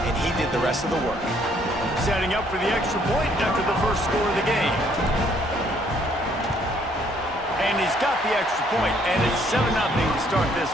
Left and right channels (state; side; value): normal; both; correlation 0.65